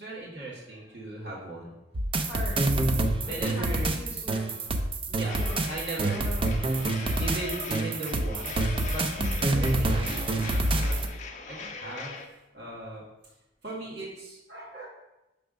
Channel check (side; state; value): both; normal; correlation 0.69